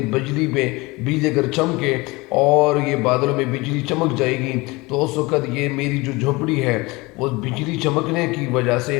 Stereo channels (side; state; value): right; quieter; 23.5 dB